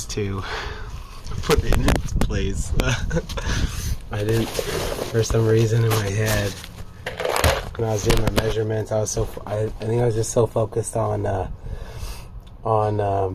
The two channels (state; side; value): identical; both; correlation 1.00